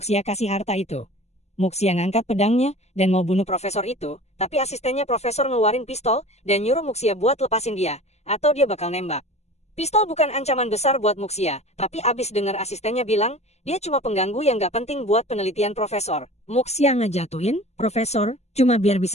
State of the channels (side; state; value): right; late; 0.31 ms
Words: kasih harta itu. Muxia ngangkat pedangnya, dan mau bunuh profesor itu, tapi asistennya profesor ngeluarin pistol, dan nyuruh Muxia buat lepasin dia, atau dia bakal nembak. Pistol bukan ancaman besar buat Muxia, tapi abis dengar asistennya bilang, dia cuma pengganggu yang gak penting buat penelitian profesor. Muxia ngejatuhin, profesor, cuma biar